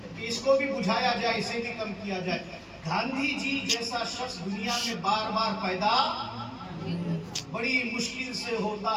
इसको भी बुझाया जाए, इसे भी कम किया जाए। गांधी जी जैसा शख्स दुनिया में बार बार पैदा बड़ी मुश्किल से होता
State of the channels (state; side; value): identical; both; correlation 1.00